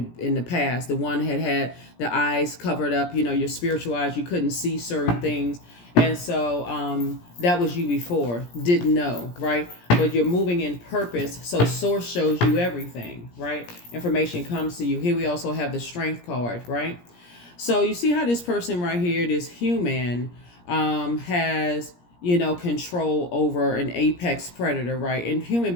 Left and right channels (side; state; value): right; late; 17 ms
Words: in the past. The one had the eyes covered up, your spiritual eyes. You couldn't see certain things. And so that was you before, didn't know, right? But you're moving in purpose. So source shows you everything, right? Information comes to you. Here we also have the strength card, right? So you see how this person right here, this human, has, control over an apex predator, right? And human